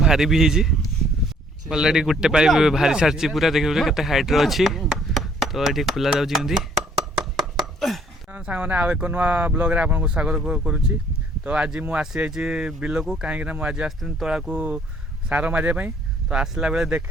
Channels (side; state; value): both; normal; correlation 0.62